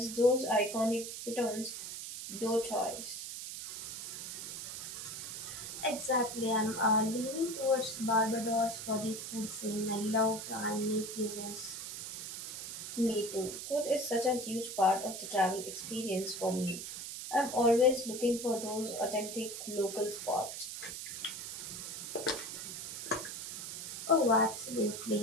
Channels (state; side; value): noise; right; hiss, 7 dB below the sound